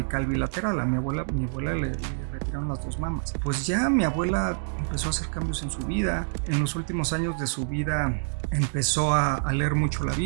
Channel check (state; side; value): silent; left; digital silence